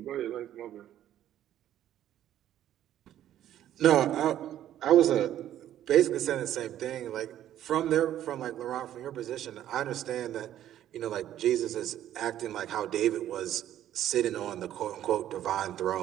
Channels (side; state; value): left; quieter; 11.8 dB